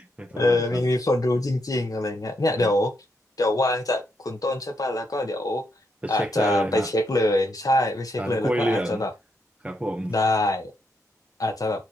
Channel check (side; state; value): both; normal; correlation 0.79